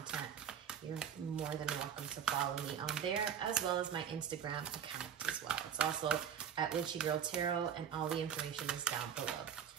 you're more than welcome to follow me on there, as well as my Instagram account as well. It's also at WitchyGirlTarot, and all the information is down below.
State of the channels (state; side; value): quieter; left; 8.4 dB